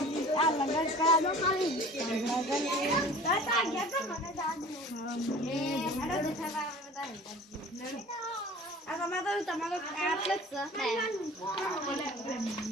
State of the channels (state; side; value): normal; both; correlation 0.44